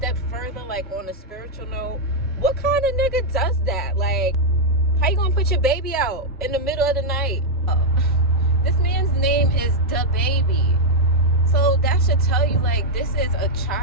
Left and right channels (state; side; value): normal; both; correlation -0.03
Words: further, like on a spiritual note, what kind of nigga does that? Like, how you gonna put your baby out in the middle of the night? This man's name is Da Baby. So that should tell you, like, this is a